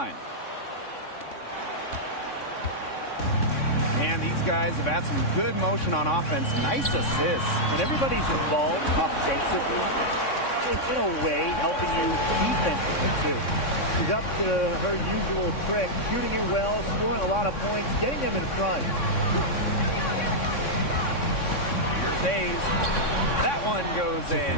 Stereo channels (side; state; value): right; late; 3.6 ms